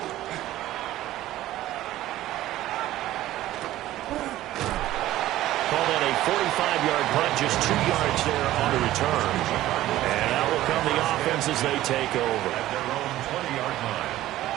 Call that a 45-yard punt, just 2 yards there on the return. And out will come the offense as they take over. At their own 20-yard line.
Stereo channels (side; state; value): left; quieter; 14.8 dB